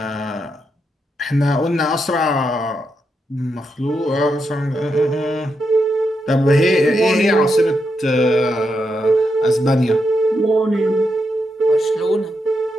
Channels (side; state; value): both; normal; correlation 0.83